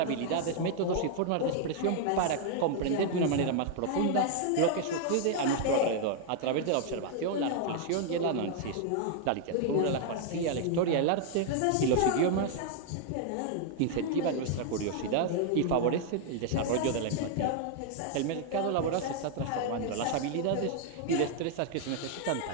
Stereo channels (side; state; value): both; different; correlation 0.00